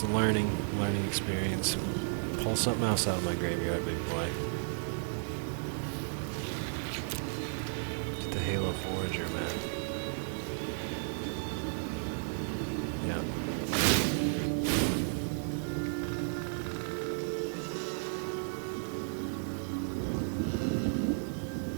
a learning experience. Pull something else out of my graveyard, big boy. The Halo Forager, man. Yeah.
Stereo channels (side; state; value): left; silent; 55 dB below the other